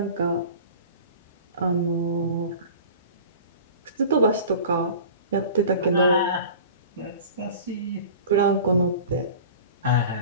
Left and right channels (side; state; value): both; inverted; correlation -0.40